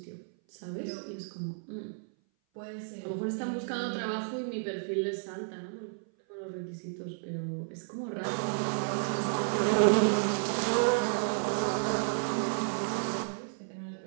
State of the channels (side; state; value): left; silent; 56 dB below the other